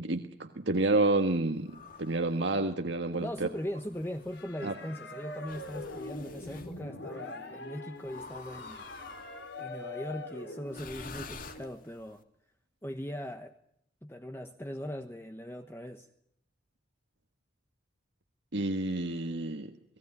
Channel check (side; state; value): both; normal; correlation 0.23